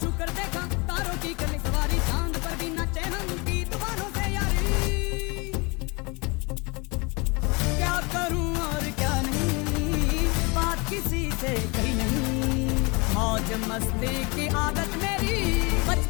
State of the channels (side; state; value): right; quieter; 28.3 dB